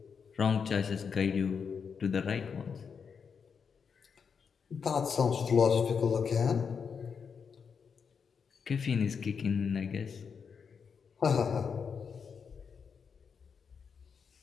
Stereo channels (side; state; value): right; quieter; 6.2 dB